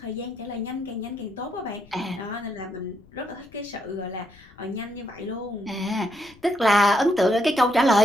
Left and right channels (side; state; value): left; noise; rumble, 25 dB below the sound